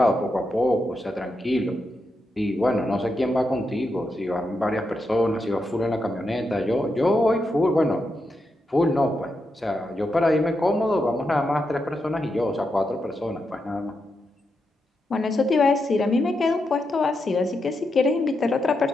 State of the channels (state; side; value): normal; both; correlation 0.85